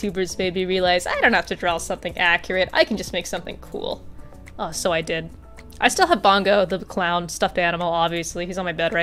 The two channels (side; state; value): both; identical; correlation 1.00